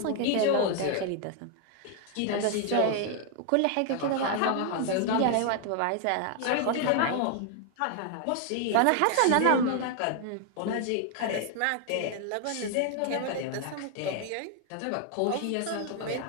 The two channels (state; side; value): different; both; correlation 0.00